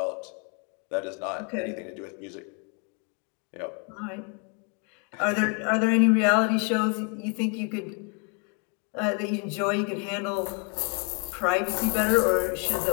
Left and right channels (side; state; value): right; quieter; 37.1 dB